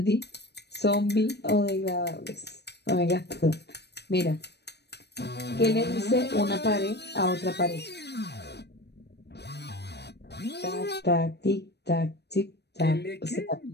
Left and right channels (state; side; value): late; right; 0.49 ms